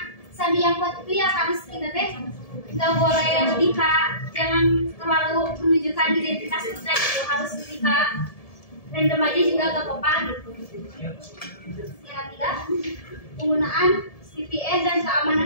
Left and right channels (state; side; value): late; right; 1.7 ms